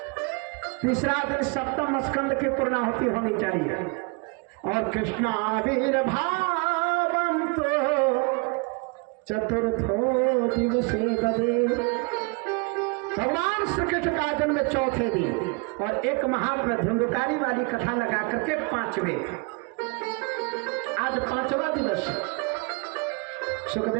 तीसरा दिन 7वां स्कंद की पूर्णाहुति होनी चाहिए। और कृष्ण आविर्भावंतो चतुर्थो दिवसे ददे। भगवान श्री कृष्ण का जन्म 4थे दिन और एक महात्मा धुंधकारी वाली कथा लगा करके 5वें। आज 5वां दिवस।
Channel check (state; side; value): quieter; left; 32.2 dB